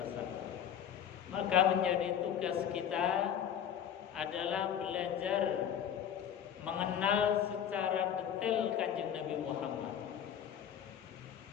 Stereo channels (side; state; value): right; quieter; 9.2 dB